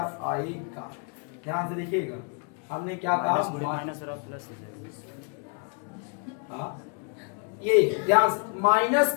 आएगा। ध्यान से देखिएगा हमने क्या कहा, माइनस प्लस, हाँ ये ध्यान से, माइनस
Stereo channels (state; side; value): quieter; right; 38.9 dB